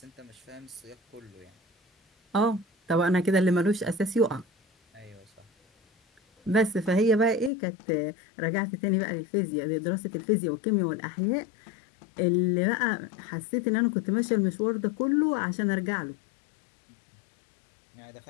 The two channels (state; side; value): drops out; right; at 7.5 s